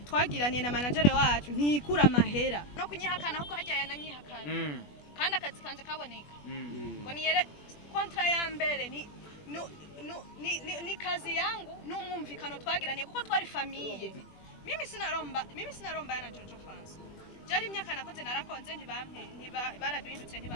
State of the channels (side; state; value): right; late; 20 ms